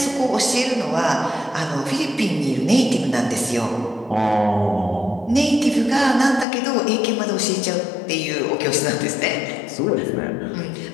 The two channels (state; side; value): drops out; right; at 6.5 s